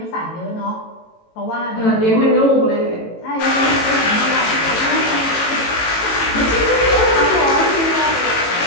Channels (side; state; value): right; late; 18 ms